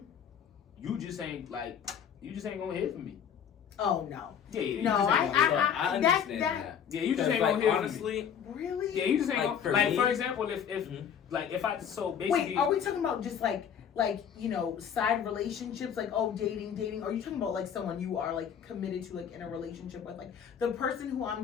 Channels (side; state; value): right; quieter; 8.1 dB